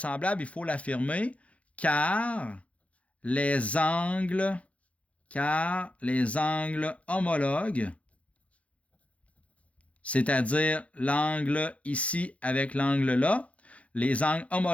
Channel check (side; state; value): right; late; 0.064 ms